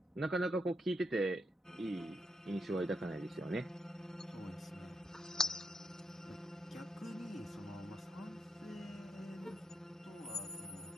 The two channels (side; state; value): both; normal; correlation 0.81